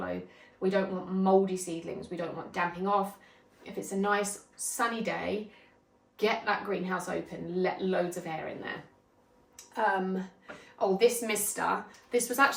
We don't want mouldy seedlings. We don't want damping off. If it's a nice sunny day, get that greenhouse open, let loads of air in there. Oh, this mister, this was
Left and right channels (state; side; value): identical; both; correlation 1.00